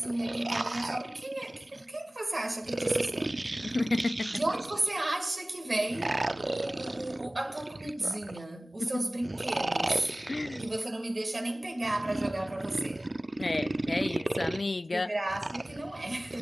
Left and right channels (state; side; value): normal; both; correlation 0.98